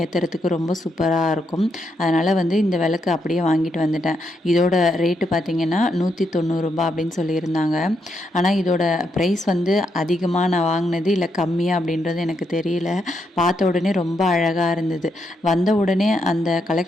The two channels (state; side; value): normal; both; correlation 0.80